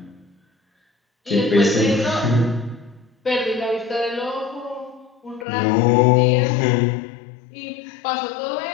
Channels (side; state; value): right; drops out; at 5.5 s